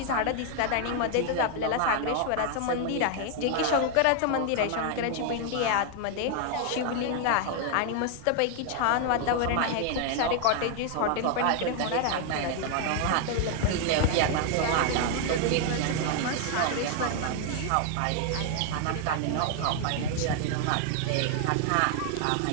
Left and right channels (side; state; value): both; different; correlation 0.00